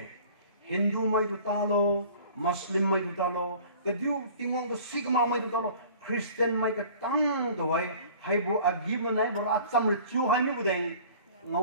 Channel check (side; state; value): both; inverted; correlation -0.47